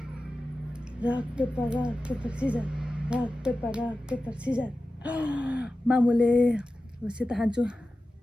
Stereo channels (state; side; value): normal; both; correlation 0.94